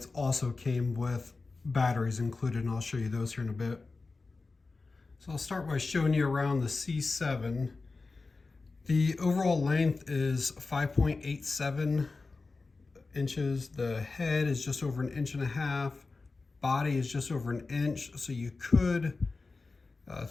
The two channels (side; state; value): right; quieter; 3.8 dB